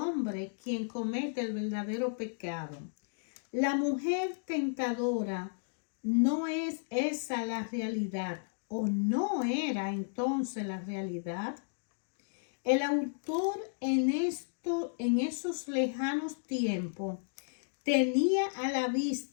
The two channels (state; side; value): silent; right; digital silence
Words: quien comete el verdadero pecado. La mujer tentadora no es esa la realidad, o no era entonces la realidad. El autor en esos lejanos tiempos tenía a la